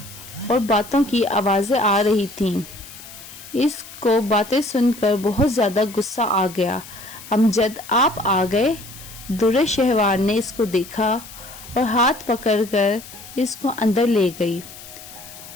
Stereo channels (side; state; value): left; noise; hiss, 16 dB below the sound